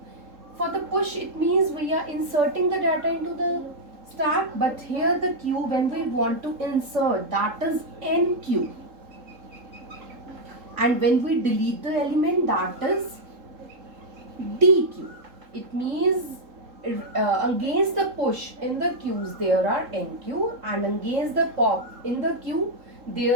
For the push it means we are inserting the data into the stack, but here the queue when we want to insert, that is NQ. And when we delete the element, that is DQ. It means against the push in the queues there are NQ, and against the pop in the queue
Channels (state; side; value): late; left; 3.7 ms